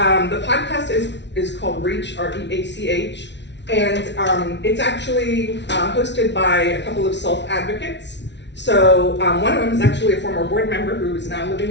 podcast is called Reach, R-E-A-C-H, and it's actually hosted by a couple of self-advocates. So one of them is actually a former board member who is now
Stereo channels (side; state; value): right; late; 0.51 ms